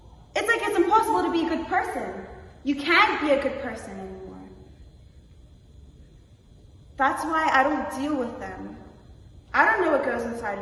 It's like it's impossible to be a good person. You can't be a good person anymore. That's why I don't deal with them. I don't know what goes inside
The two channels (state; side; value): identical; both; correlation 1.00